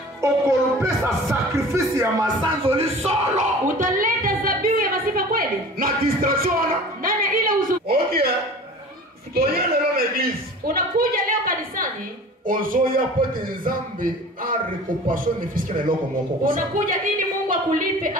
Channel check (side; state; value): both; normal; correlation 0.41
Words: Okolopesa sacrifice ya masanzo li solo. Utaleta zabihu ya masifa kweli? Na distraction. Ndani ya ile uzu. Okay. Toye lelo na église. Unakuja leo kanisani. Ozoya pote Nzambe a récompension ne fiske na loko moko. Unakuja ili Mungu akulipe